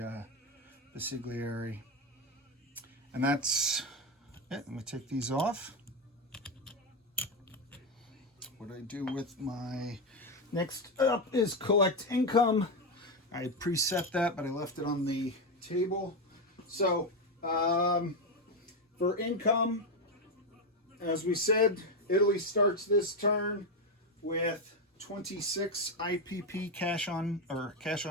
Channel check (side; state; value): both; normal; correlation 0.09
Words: Basigliere. And that's it. Let me take these off. What I do with my next up is collect income. I preset that, but I left it on the table. So for income, as we said, Italy starts this turn with 26 IPP cash on